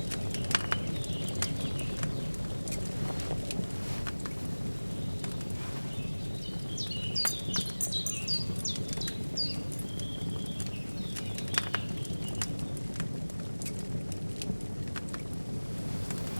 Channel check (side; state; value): both; inverted; correlation -1.00